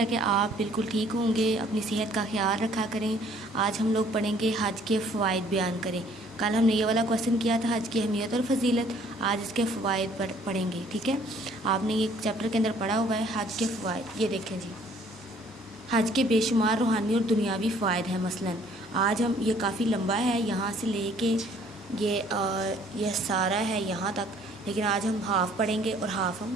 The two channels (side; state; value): both; normal; correlation 0.59